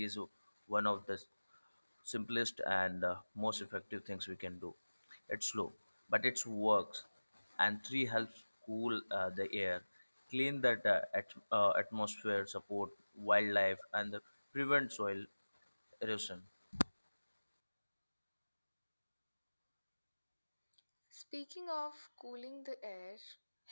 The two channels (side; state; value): both; inverted; correlation -1.00